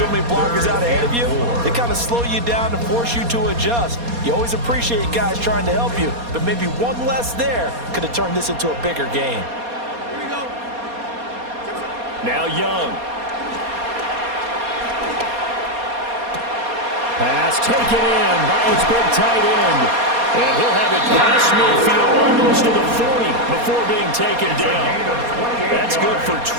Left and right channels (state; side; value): late; left; 4.2 ms